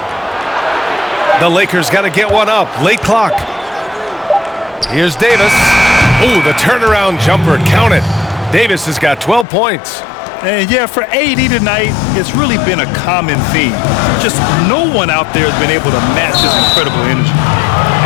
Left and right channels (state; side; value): drops out; right; at 9.5 s